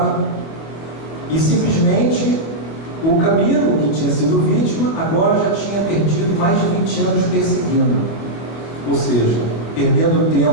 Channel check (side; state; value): right; late; 24 ms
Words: e simplesmente o Camilo, que tinha sido vítima, agora já tinha perdido mais de 20 anos perseguindo, ou seja, perdendo